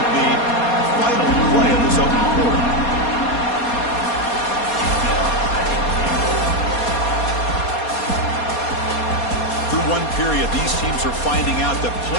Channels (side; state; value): right; late; 4.2 ms